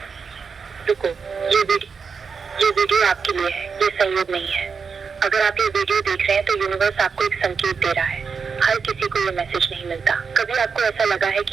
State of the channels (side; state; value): left; quieter; 5.6 dB